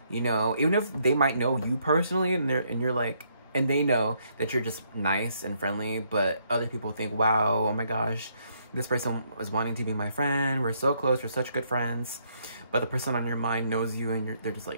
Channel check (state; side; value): inverted; both; correlation -0.72